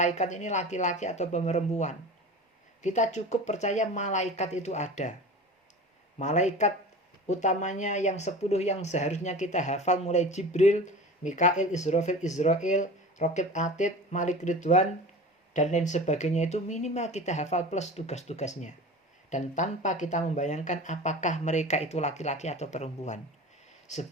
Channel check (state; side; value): normal; both; correlation 0.35